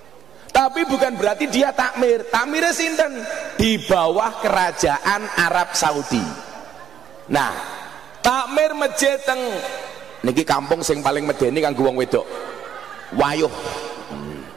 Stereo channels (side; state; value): left; quieter; 9.1 dB